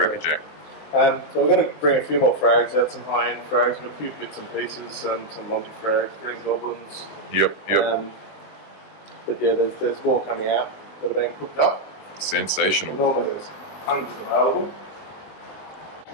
So we're going to bring a few more frags out, some high-end frags. We've got a few bits and pieces, some Monty frags, green goblins. Yep. But yeah, there's more coming out that are being cooked up. Sensational. Normally there's hundreds available.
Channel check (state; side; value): late; right; 20 ms